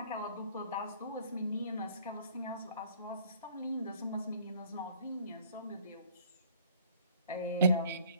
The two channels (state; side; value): inverted; both; correlation -0.55